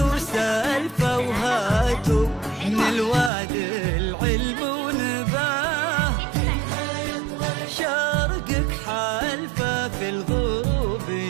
وهاتوا من الوادي العلم ونباه، شرقك حالفة، في الغروب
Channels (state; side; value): drops out; left; at 3.3 s